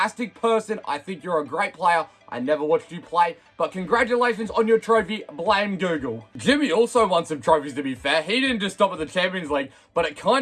person. I think you're a great player. I never watched you play, but congratulations on your trophy. Blame Google. Jimmy also won some trophies, to be fair. He didn't just stop at the Champions League, but it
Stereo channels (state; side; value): identical; both; correlation 1.00